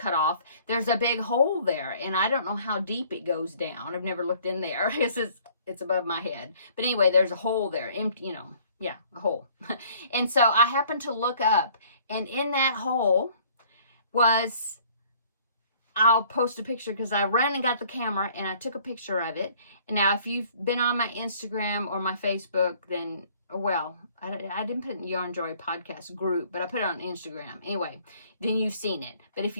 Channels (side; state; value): both; inverted; correlation -0.57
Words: off, there's a big hole there, and I don't know how deep it goes down. I've never looked in there. It's above my head. But anyway, there's a hole there, empty, a hole. And so I happened to look up, and in that hole was, I'll post a picture because I ran and got the camera and I took a picture of it. And now, if you've been on my Instagram or my Facebook, then, well, I didn't put it in the Yarnjoy podcast group, but I put it on Instagram. Anyway, then you've seen it. But if